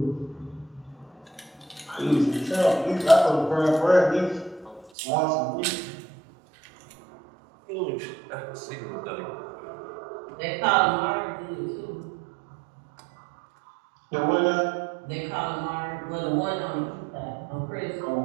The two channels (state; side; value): drops out; left; at 4.9 s